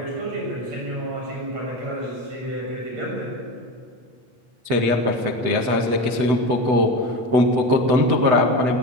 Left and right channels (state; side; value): late; left; 8.0 ms